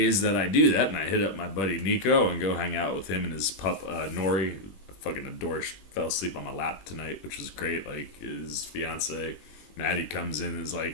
that I do that, and I hit up my buddy Nico and go hang out with him and his pup Nori. Fucking adore. Fell asleep on my lap tonight, which was great. Like his fiance Maddie comes in and is like,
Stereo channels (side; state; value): right; late; 21 ms